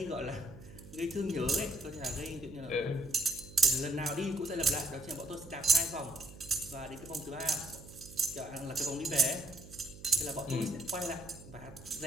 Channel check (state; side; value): noise; right; hum, 17 dB below the sound